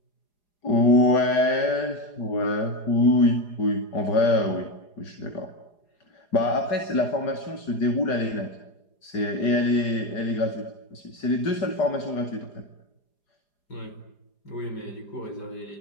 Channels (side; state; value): right; late; 4.9 ms